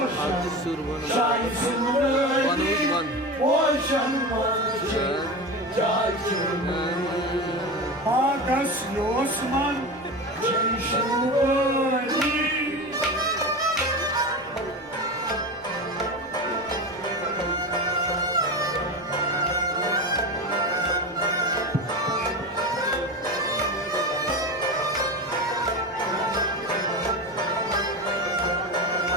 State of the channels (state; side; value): normal; both; correlation 0.25